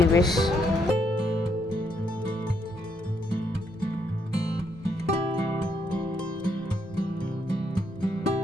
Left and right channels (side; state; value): both; normal; correlation 0.74